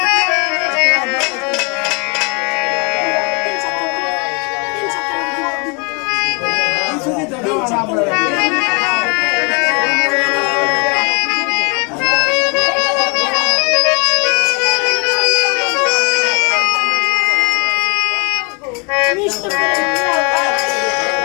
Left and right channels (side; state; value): right; quieter; 32.5 dB